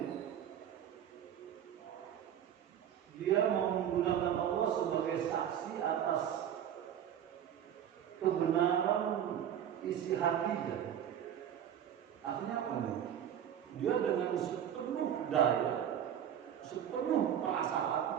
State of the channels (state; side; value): quieter; left; 9.7 dB